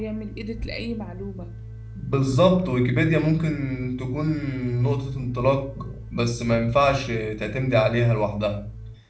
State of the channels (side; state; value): both; identical; correlation 1.00